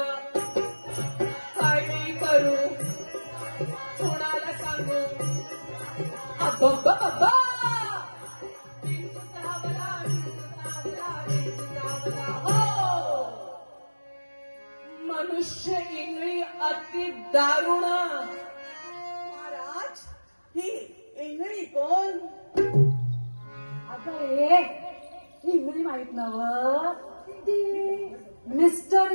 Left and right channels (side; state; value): both; inverted; correlation -1.00